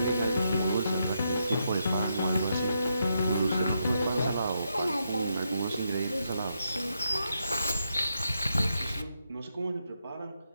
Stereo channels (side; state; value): both; inverted; correlation -0.81